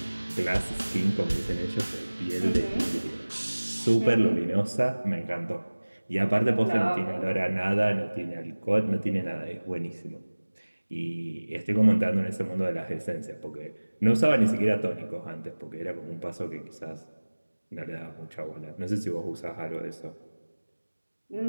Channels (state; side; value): inverted; both; correlation -1.00